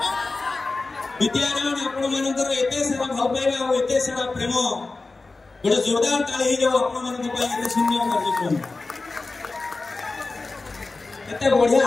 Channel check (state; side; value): quieter; right; 3.6 dB